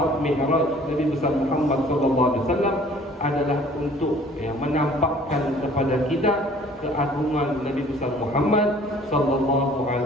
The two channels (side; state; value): both; normal; correlation 0.53